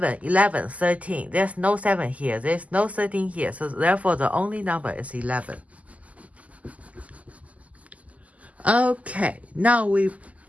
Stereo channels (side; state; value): left; late; 0.072 ms